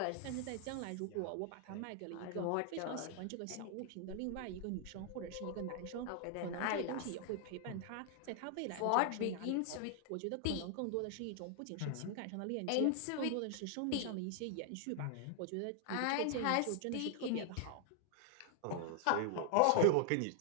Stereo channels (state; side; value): different; both; correlation 0.00